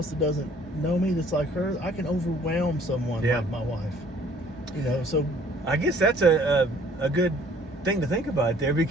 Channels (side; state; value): both; normal; correlation 0.57